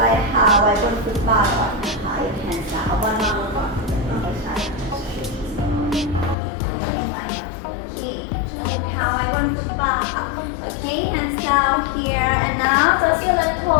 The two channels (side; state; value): right; drops out; at 6.4 s